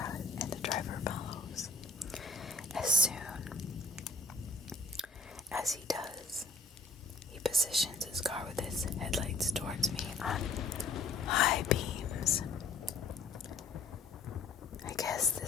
and the driver follows. As soon as he does, he positions his car with his headlights towards me on high beams. I guess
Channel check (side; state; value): right; quieter; 3.4 dB